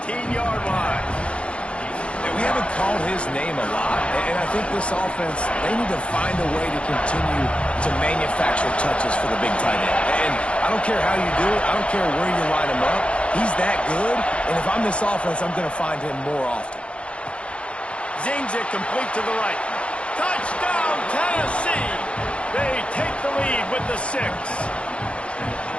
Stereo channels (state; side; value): late; right; 0.059 ms